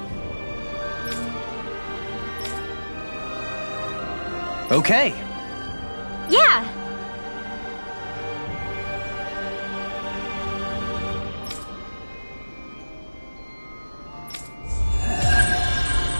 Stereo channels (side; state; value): both; inverted; correlation -1.00